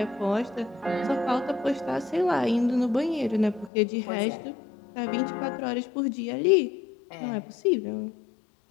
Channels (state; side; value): drops out; right; at 3.7 s